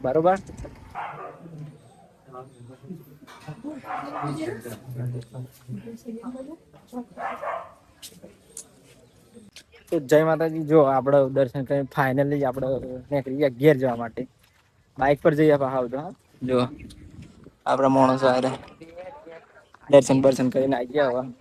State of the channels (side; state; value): both; identical; correlation 1.00